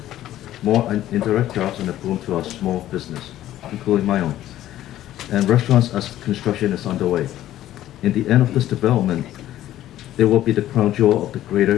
more indirect jobs, and a boom to our small business, including my own, and restaurants as construction is underway. In the end of this development, it will be the crown jewel of the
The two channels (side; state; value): right; quieter; 13.3 dB